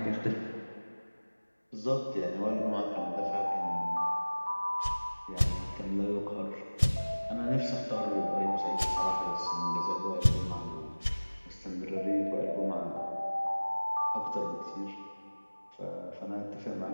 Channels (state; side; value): inverted; both; correlation -1.00